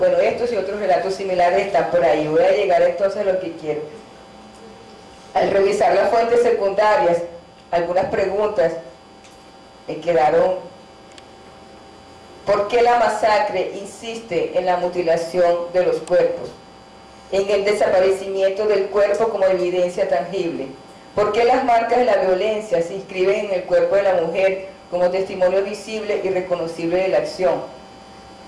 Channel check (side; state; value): both; identical; correlation 1.00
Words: estos y otros relatos similares están por ahí. Voy a llegar entonces a lo que quiero. Al revisar las fuentes secundarias, algunas preguntas me quedaron. ¿Por qué la masacre insiste en la mutilación de los cuerpos? En el desaparecimiento del cuerpo como evidencia tangible. ¿Por qué las marcas de la violencia se inscriben en el cuerpo de la mujer como testimonio visible y reconocible de la acción?